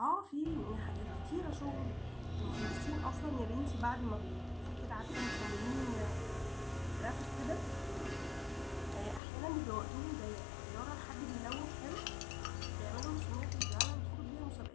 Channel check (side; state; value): right; drops out; at 9.2 s